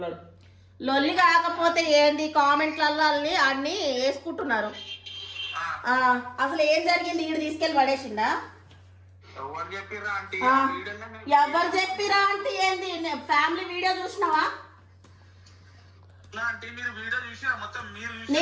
లొల్లి కాకపోతే ఏంది, కామెంట్లలో అన్ని వేసుకుంటున్నారు. అసలు ఏం జరిగింది? ఈడు తీసుకెళ్ళి పడేసిందా? ఎవరు చెప్పిరా అంటే ఏంది? ఫ్యామిలీ వీడియో చూసినావా?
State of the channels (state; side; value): identical; both; correlation 1.00